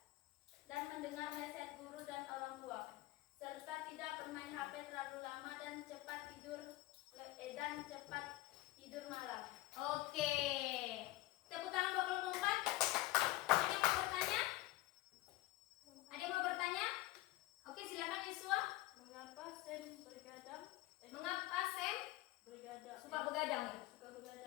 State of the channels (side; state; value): right; quieter; 17.9 dB